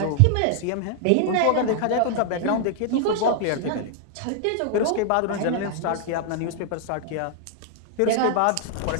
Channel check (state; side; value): different; both; correlation 0.00